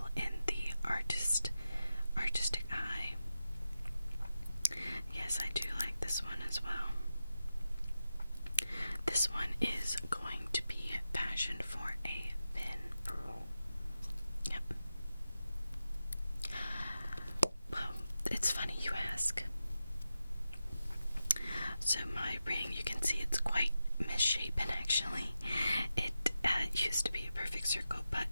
in the artistic eye. Yes, I do like this one as well. This one is going to be fashioned for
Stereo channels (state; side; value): inverted; both; correlation -0.91